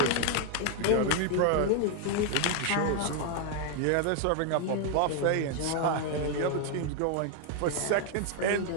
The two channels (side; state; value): both; different; correlation 0.01